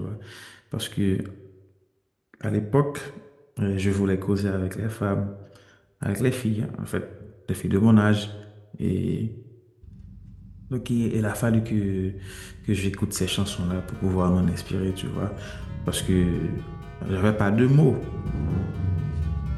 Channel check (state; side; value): identical; both; correlation 1.00